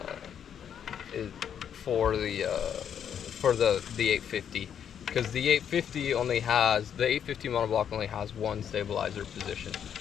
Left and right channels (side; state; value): right; quieter; 8.6 dB